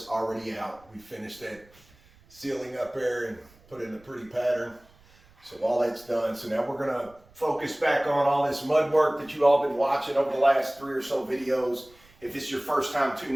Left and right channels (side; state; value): right; noise; rumble, 28 dB below the sound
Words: already out. We finished that ceiling up there and put in a pretty pattern. So all that's done. So now we're going to focus back on all this mud work that you all been watching over the last 3 or so videos. If this is your first time